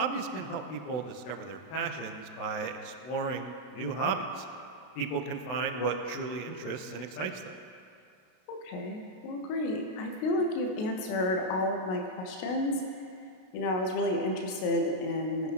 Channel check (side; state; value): right; late; 32 ms